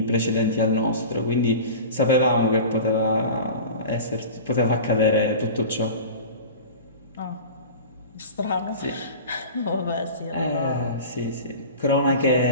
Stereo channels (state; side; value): inverted; both; correlation -0.35